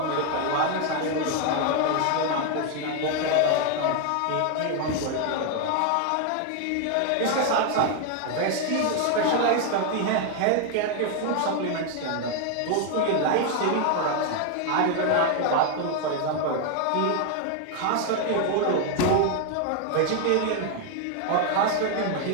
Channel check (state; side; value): different; both; correlation 0.01